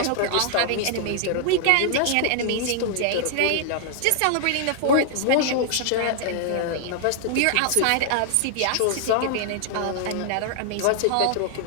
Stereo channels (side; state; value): both; different; correlation 0.00